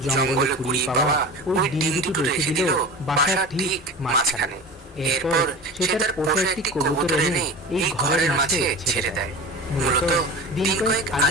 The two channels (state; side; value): normal; both; correlation 0.33